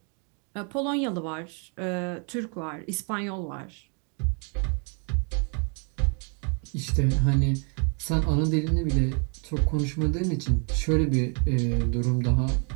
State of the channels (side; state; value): left; quieter; 38.5 dB